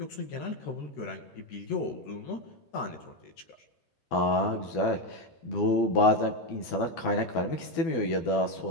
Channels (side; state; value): right; late; 12 ms